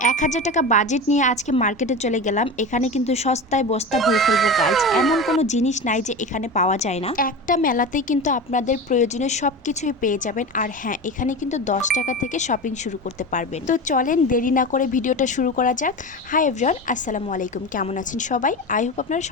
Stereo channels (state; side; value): normal; both; correlation 0.26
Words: 1000 টাকা বাজেট নিয়ে আজকে মার্কেটে চলে গেলাম। এখানে কিন্তু সস্তায় বস্তা ভরে ফেলবো গাইজ। এমন কোনো জিনিস নাই যে এখানে পাওয়া যায় না। একটা মেলাতেই কিন্তু আপনাদের প্রয়োজনীয় সব কিছুই পেয়ে যাবেন। আর হ্যাঁ, এখানে কিন্তু 10 টাকা থেকে শপিং শুরু করতে পারবেন। তো চলেন দেরি না করে ভিডিওটা শুরু করা যাক। হাই এভরিওয়ান, আসসালামু আলাইকুম। কেমন আছেন সবাই? আই হোপ আপনারা